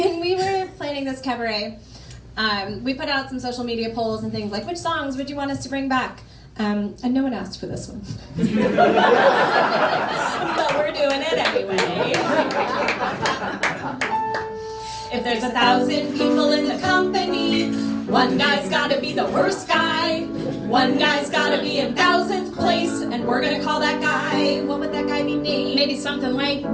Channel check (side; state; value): both; identical; correlation 1.00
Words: we were planning this cabaret, we put out some social media polls and things like, which songs would you want us to bring back? And no one asked for this one. But we're doing it anyway. If there's 1,000 people in the company, one guy's gotta be the worst guy. One guy's gotta be in 1,000th place, and we're gonna call that guy. What would that guy be named? Maybe something like